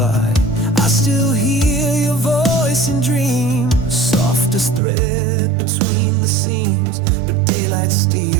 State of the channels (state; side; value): drops out; left; at 4.8 s